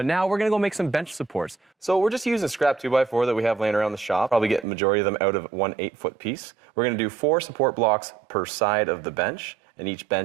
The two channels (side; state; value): left; drops out; at 4.7 s